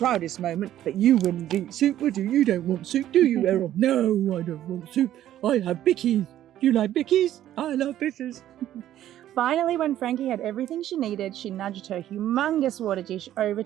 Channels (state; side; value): quieter; left; 12.3 dB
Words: moment, but you wouldn't eat soup, would you? You don't want soup, do you, Errol? No, I don't want soup. I have bickies. Do you like bickies? I love bitters. Finally, when Frankie had everything she needed, she nudged her humongous water dish over